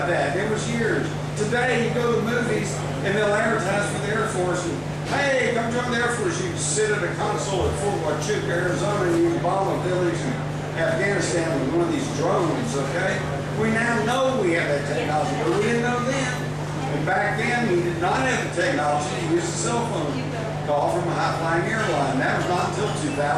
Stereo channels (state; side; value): identical; both; correlation 1.00